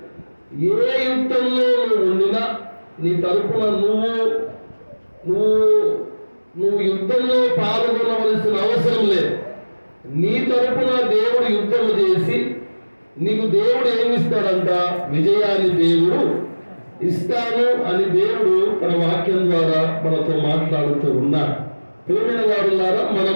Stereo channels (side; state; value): both; inverted; correlation -1.00